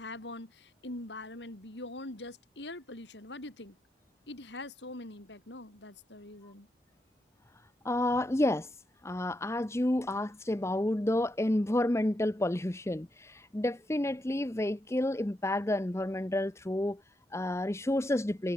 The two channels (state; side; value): normal; both; correlation 0.83